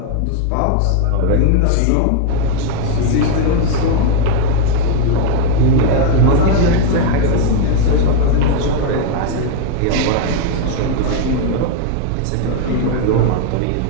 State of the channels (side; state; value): both; different; correlation 0.00